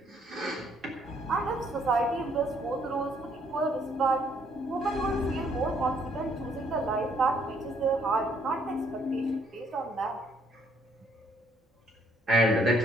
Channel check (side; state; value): both; normal; correlation 0.67